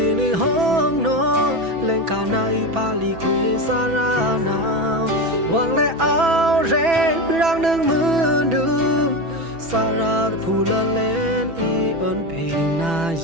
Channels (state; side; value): late; left; 6.1 ms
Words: đi hong nó lên khả na y pali quê sa ra nào Hoàng lệ áo rê răng nâng mưa đơm sa ra phù lên y ơn phình na